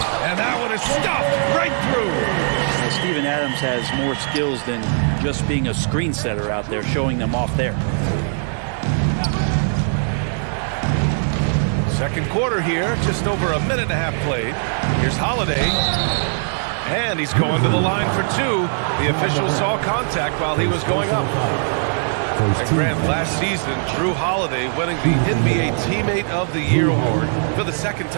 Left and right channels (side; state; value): left; silent; digital silence